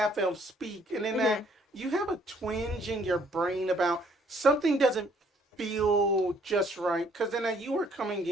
elf speak, and then that you have a twinge in your brain about something doesn't feel just right. Because then you were coming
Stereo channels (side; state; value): both; normal; correlation 0.63